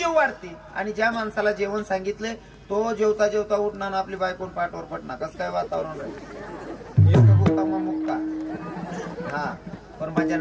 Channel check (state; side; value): identical; both; correlation 1.00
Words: वाढते आणि ज्या माणसाला जेवण सांगितले तो जेवता जेवता उठणार आपली बायकोन पाठवर पडणार कसं काय वातावरण राहील मुक्का हा पण माझ्या